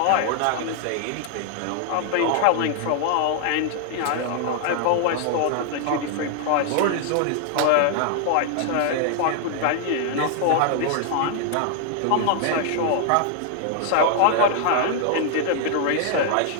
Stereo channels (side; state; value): both; different; correlation 0.00